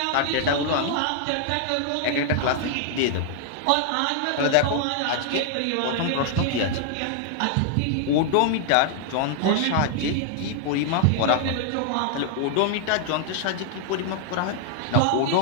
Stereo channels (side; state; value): both; different; correlation 0.00